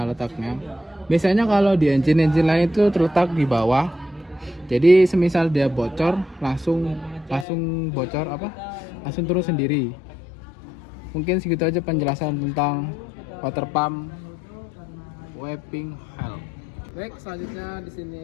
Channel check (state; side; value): drops out; right; at 7.5 s